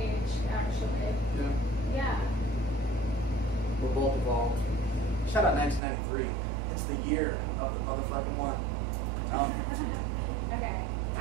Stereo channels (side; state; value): left; drops out; at 5.8 s